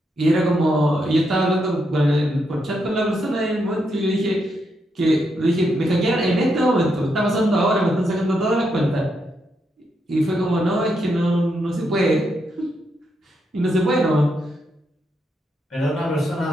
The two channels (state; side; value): normal; both; correlation 0.81